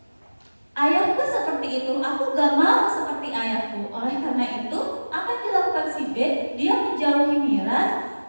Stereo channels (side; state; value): both; inverted; correlation -1.00